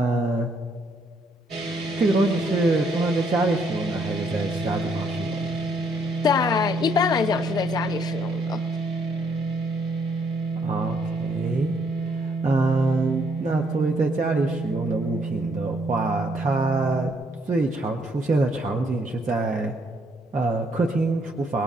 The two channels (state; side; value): normal; both; correlation 0.69